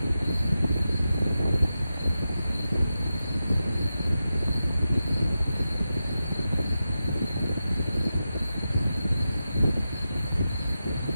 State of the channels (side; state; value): both; inverted; correlation -0.90